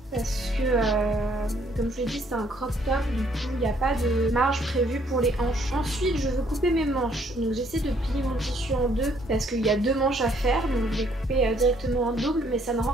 parce que comme je l'ai dit c'est un crop top, du coup il n'y a pas de marge prévue pour les hanches. Ensuite je veux couper mes manches, donc j'essaie de plier mon tissu en deux parce qu'il y a 2 manches à faire, donc je vais couper directement en double, mais ça ne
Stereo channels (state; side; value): normal; both; correlation 0.65